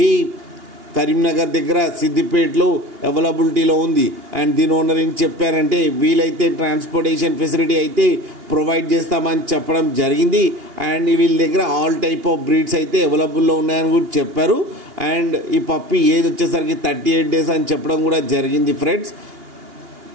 కరీంనగర్ దగ్గర సిద్దిపేటలో అవైలబిలిటీలో ఉంది. అండ్ దీని ఓనర్ ఏం చెప్పారంటే, వీలైతే ట్రాన్స్పోర్టేషన్ ఫెసిలిటీ అయితే ప్రొవైడ్ చేస్తామని చెప్పడం జరిగింది. అండ్ వీళ్ళ దగ్గర ఆల్ టైప్ ఆఫ్ బ్రీడ్స్ అయితే అవైలబుల్లో ఉన్నాయని కూడా చెప్పారు. అండ్ ఈ పప్పీ ఏజ్ వచ్చేసరికి 38 days అని చెప్పడం కూడా జరిగింది. Friends,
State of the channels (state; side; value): late; left; 2.8 ms